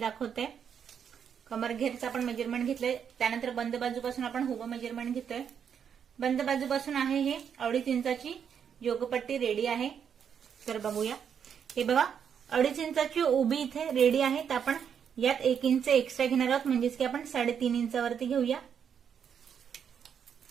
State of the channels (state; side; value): quieter; left; 7.8 dB